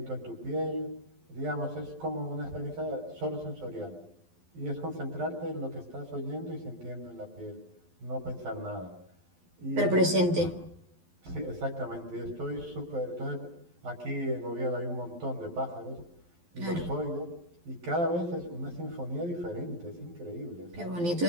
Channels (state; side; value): late; left; 12 ms